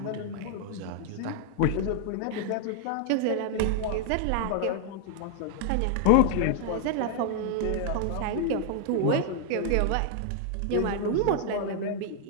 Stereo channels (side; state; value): both; different; correlation -0.01